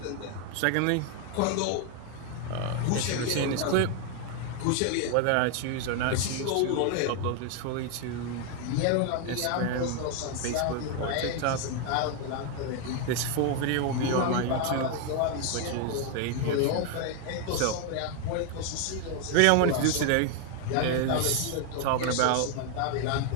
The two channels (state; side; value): different; both; correlation 0.01